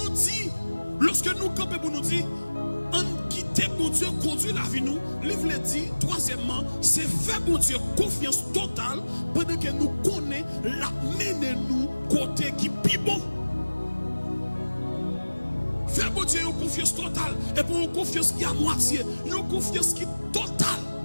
nous campons pour nous dire, en quitter bon Dieu, conduire la vie nous, livre le dit, troisièmement, c'est faire bon Dieu confiance totale pendant que nous connaissons la mener nous côté qui est bon. Faire bon Dieu une confiance totale et pour une confiance qui est à moitié, une confiance qui est totale.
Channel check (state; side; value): inverted; both; correlation -1.00